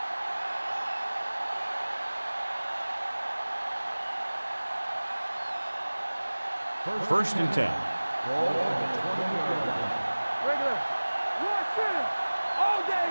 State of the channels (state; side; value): inverted; both; correlation -1.00